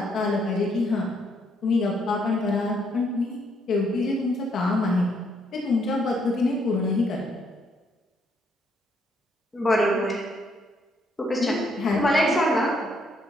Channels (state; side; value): normal; both; correlation 0.72